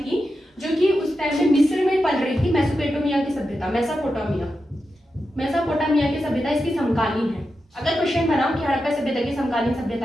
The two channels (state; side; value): normal; both; correlation 0.89